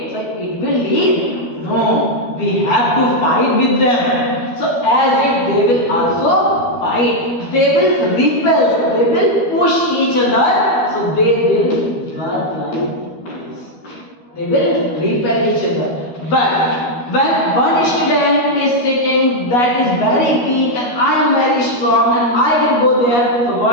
So it will leave? No, we have to fight with them. So as if they will also fight, they will repel, they will push each other, so they will work like this. They will repel each other. But when one student is sitting that is very weak and I am very strong and I will go there, so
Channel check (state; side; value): late; right; 12 ms